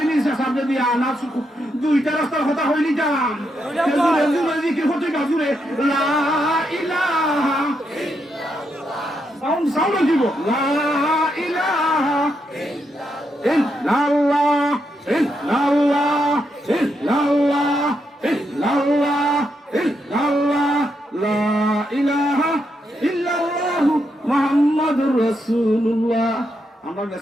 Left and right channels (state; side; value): normal; both; correlation 0.81